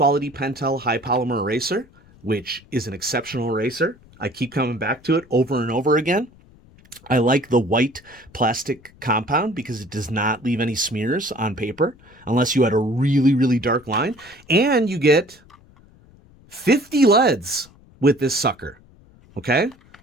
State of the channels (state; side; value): noise; left; rumble, 27 dB below the sound